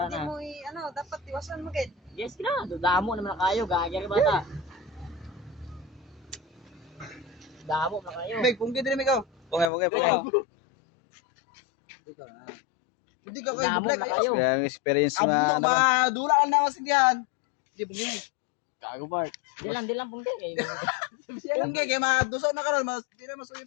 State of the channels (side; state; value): right; drops out; at 9.7 s